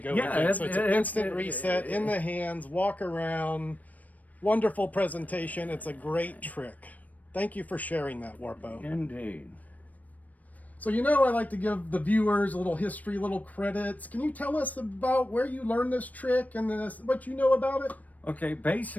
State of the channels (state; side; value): late; right; 0.075 ms